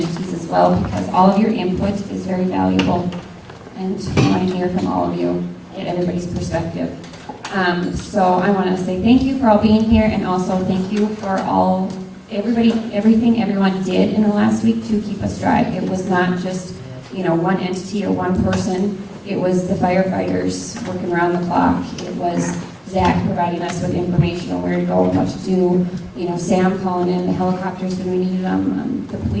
as well, because all of your input is very valuable, and we want to hear from all of you, get everybody's perspective. So I want to say thank you for all being here, and also thank you for everything everyone did in the last week to keep us dry. It was not just, one entity or one person. It was the firefighters working around the clock. It was Zach providing us with information on where to go and what to do. Sam calling in the helicopters when we needed them. The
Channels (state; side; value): identical; both; correlation 1.00